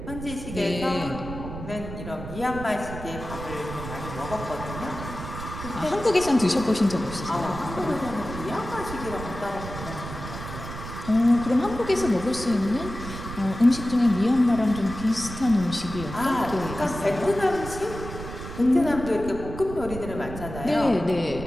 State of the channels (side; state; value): right; noise; rumble, 9 dB below the sound